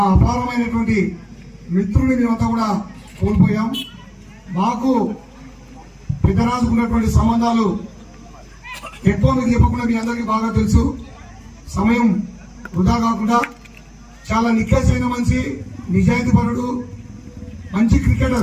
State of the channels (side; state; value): both; identical; correlation 1.00